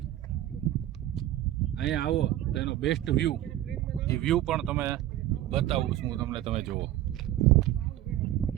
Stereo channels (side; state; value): left; quieter; 13.5 dB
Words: અહીંયા આવો તો એનો બેસ્ટ વ્યૂ, એ વ્યૂ પણ તમે બતાવું છું હું તમને. તમે જુઓ,